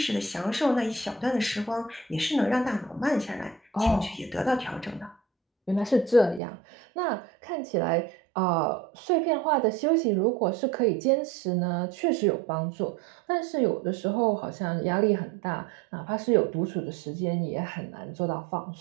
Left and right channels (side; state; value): left; drops out; at 6.4 s